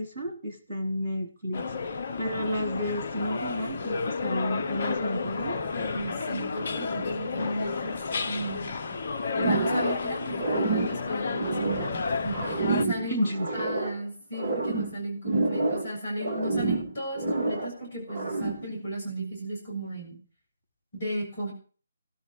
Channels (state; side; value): inverted; both; correlation -0.75